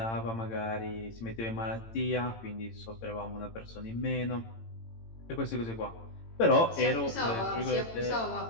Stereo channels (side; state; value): right; late; 18 ms